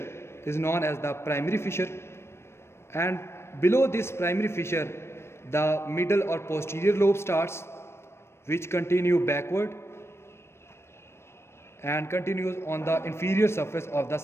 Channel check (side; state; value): right; late; 0.12 ms